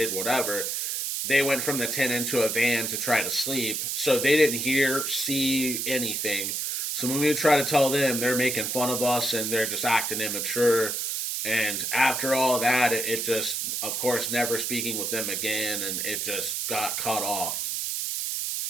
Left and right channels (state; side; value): noise; right; hiss, 1 dB below the sound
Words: whatever, they went from the tent into a van to try to sleep. So they didn't hear, see anything. So when we try to tell them, they're making fun of us and they're just acting immature. And after all that, it just, of course, never speaking with them again, and it just got cut off.